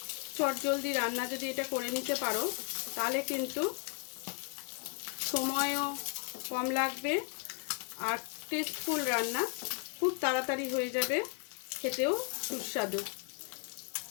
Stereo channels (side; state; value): right; quieter; 39.7 dB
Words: চটজলদি রান্না যদি এটা করে নিতে পারো তাহলে কিন্তু সময়ও কম লাগবে আর টেস্টফুল রান্না খুব তাড়াতাড়ি হয়ে যাবে, খেতেও সুস্বাদু।